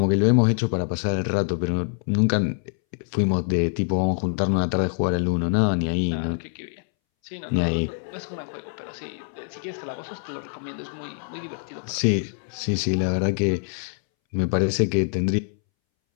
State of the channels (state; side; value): silent; right; 62 dB below the other